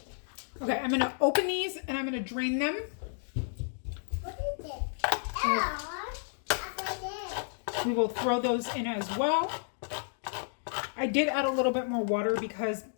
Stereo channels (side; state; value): right; silent; digital silence